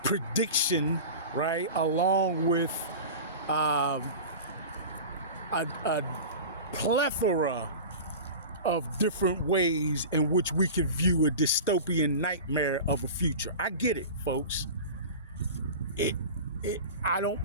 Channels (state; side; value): inverted; both; correlation -0.32